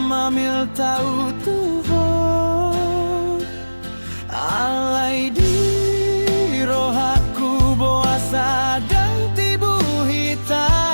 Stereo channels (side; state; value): both; inverted; correlation -1.00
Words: amil tahu Tuhan. Alai di rohaku boasa dan tibu hita.